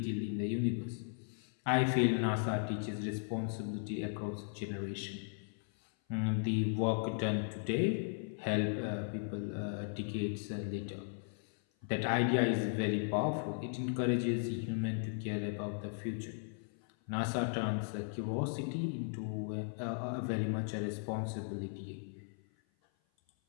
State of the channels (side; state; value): right; silent; 53 dB below the other